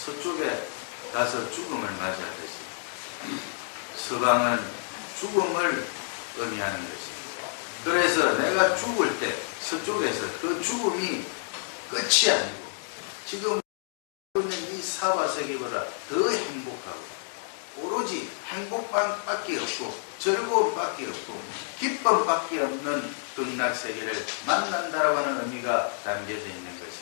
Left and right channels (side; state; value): right; silent; digital silence